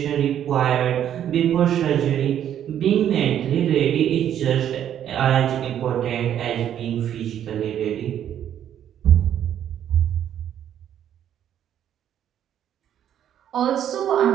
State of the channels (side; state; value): left; quieter; 10.2 dB